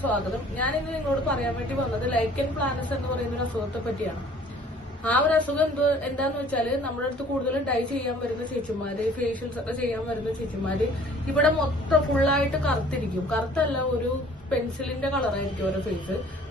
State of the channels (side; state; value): both; normal; correlation 0.53